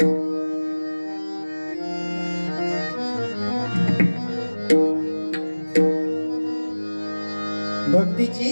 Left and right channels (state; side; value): inverted; both; correlation -1.00